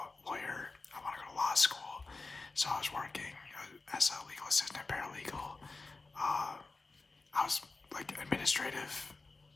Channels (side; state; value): right; quieter; 3.7 dB